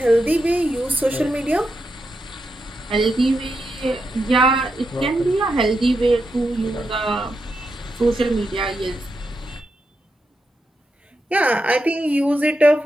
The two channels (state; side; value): normal; both; correlation 0.85